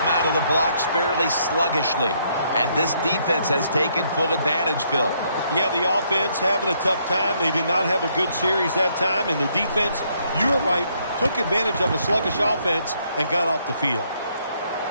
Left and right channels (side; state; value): both; inverted; correlation -0.71